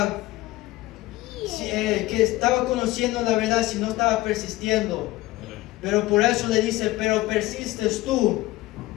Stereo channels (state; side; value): quieter; right; 18.1 dB